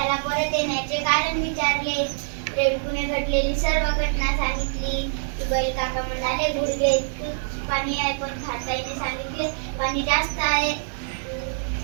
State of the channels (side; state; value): left; silent; digital silence